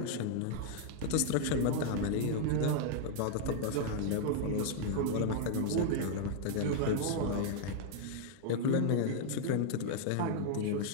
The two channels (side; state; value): both; different; correlation -0.01